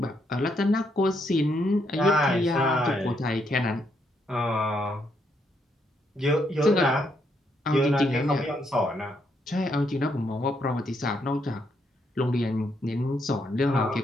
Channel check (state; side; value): normal; both; correlation 0.75